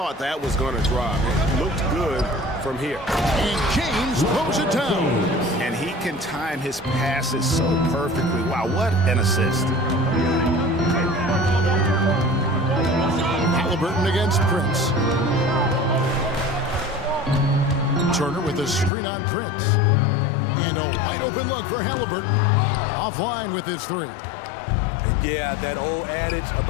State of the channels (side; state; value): right; drops out; at 18.9 s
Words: that was going to drop. It looked good from here. And James blows it down. And he can time his passes so perfectly. Wow, what an assist. Halliburton against Prince. Turner with a screen on Prince. And a wide open look for Halliburton. Offline with his three. And yeah, that old adage